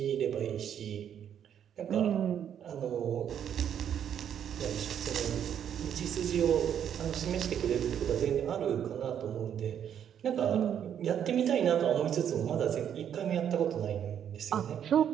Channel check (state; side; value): quieter; left; 9.1 dB